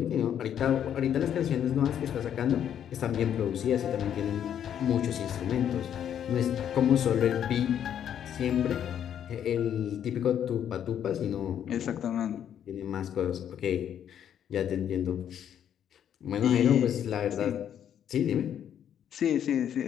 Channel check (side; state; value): right; quieter; 9.5 dB